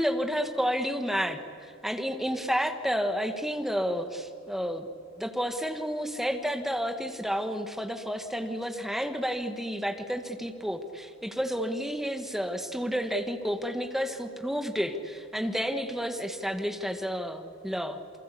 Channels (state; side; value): normal; both; correlation 0.83